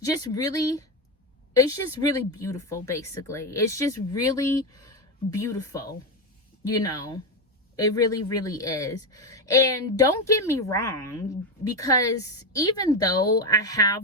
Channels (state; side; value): normal; both; correlation 0.11